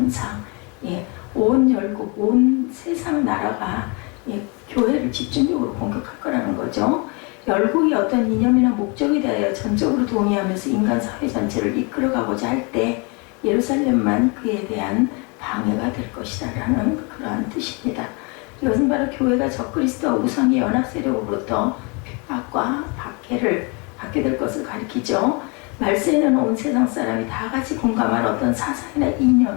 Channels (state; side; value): quieter; right; 31.5 dB